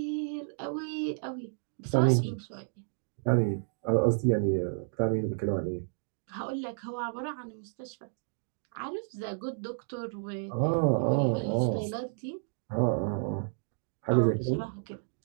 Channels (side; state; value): left; silent; digital silence